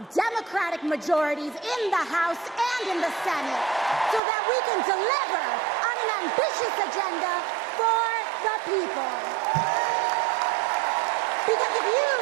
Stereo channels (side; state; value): left; drops out; at 4.2 s